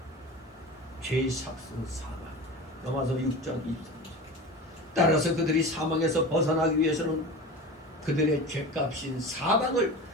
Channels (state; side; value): normal; both; correlation 0.31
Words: 죄의 삭신 사망. 로마서 6장 23절. 따라서 그들이 사망에서 벗어나기 위해서는 그들의 죄값인 사망을